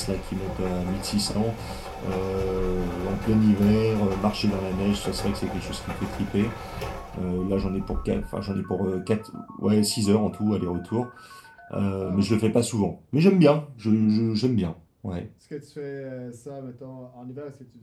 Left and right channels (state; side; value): identical; both; correlation 1.00